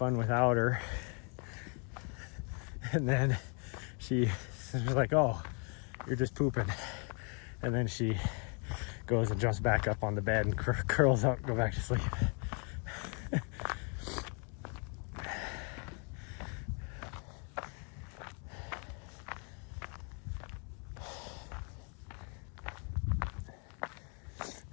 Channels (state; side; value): quieter; right; 37.8 dB